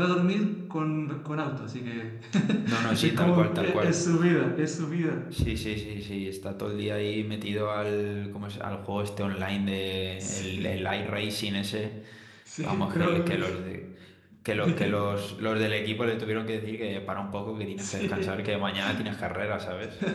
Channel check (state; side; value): identical; both; correlation 1.00